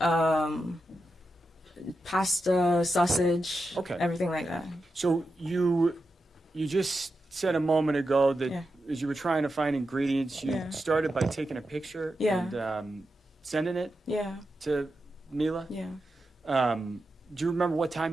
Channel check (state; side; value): normal; both; correlation 0.89